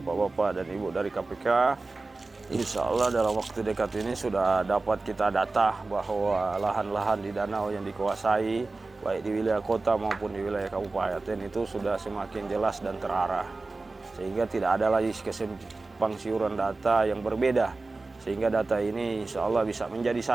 dan ibu dari KPK, insya Allah dalam waktu dekat ini sudah dapat kita data bahwa lahan-lahan di danau yang dikuasai baik di wilayah kota maupun di wilayah kabupaten itu sudah semakin jelas dan terarah, sehingga tidak ada lagi kesimpang siuran data yang berbeda, sehingga data ini insya Allah bisa menjadi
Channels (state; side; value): quieter; left; 3.5 dB